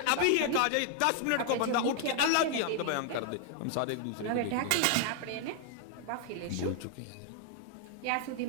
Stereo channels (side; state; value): both; different; correlation 0.00